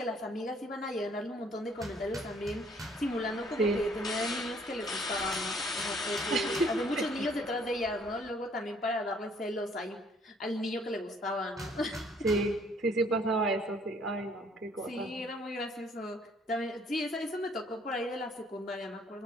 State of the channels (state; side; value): normal; both; correlation 0.61